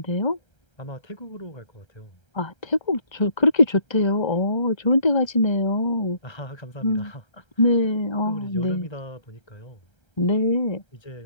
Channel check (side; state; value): right; late; 1.3 ms